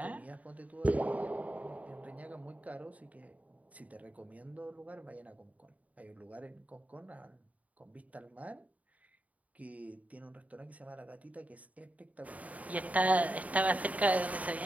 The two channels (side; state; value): left; late; 0.070 ms